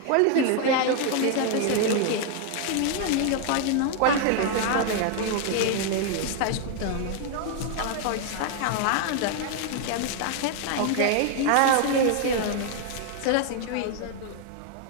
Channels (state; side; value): different; both; correlation 0.00